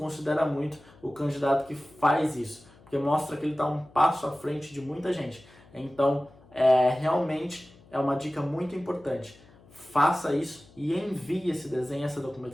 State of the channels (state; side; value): noise; left; hum, 26 dB below the sound